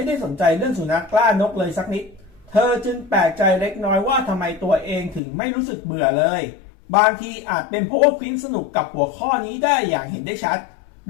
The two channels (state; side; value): drops out; right; at 5.2 s